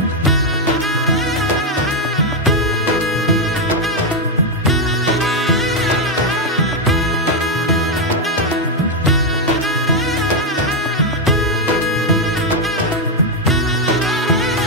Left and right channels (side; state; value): both; normal; correlation 0.03